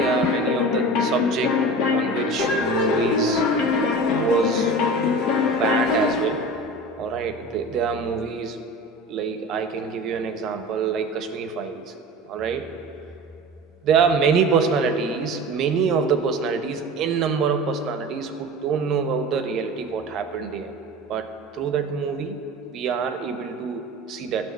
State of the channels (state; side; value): normal; both; correlation 0.34